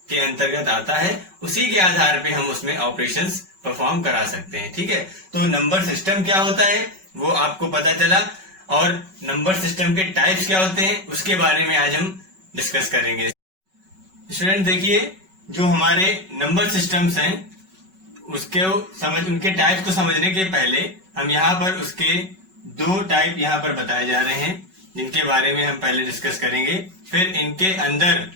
अंतर्गत आता है। उसी के आधार पे हम उसमें ऑपरेशंस परफॉर्म करा सकते हैं। ठीक है, तो नंबर सिस्टम क्या होता है वो आपको पता चला, और नंबर सिस्टम के टाइप्स क्या होते हैं उसके बारे में आज हम डिस्कस करेंगे। स्टूडेंट देखिए, जो हमारे नंबर सिस्टम्स हैं उनके टाइप्स को समझने के पहले हम यहाँ पर उसके 2 टाइप यहाँ पर बताए जा रहे हैं जिनके बारे में हम पहले डिस्कस करेंगे। फिर इनके अंदर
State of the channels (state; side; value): late; left; 5.3 ms